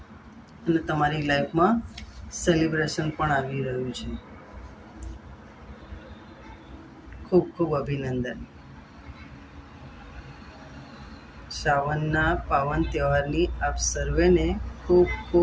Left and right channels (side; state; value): both; identical; correlation 1.00